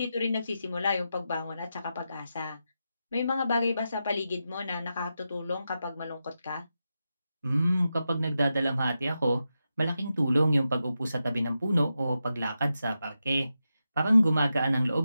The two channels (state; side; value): inverted; both; correlation -0.89